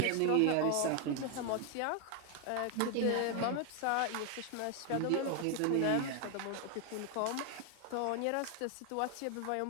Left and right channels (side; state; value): both; different; correlation 0.00